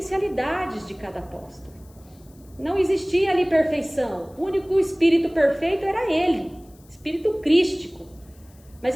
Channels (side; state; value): left; noise; hiss, 29 dB below the sound